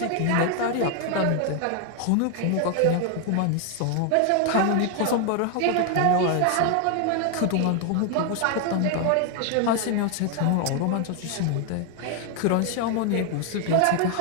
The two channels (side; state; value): both; different; correlation 0.00